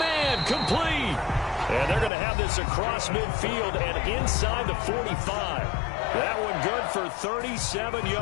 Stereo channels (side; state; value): right; drops out; at 2.1 s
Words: complete. And they're going to have this across midfield and inside the 45. That one good for 37